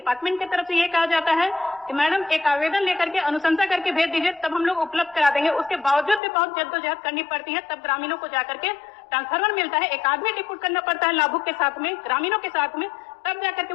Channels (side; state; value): right; drops out; at 6.2 s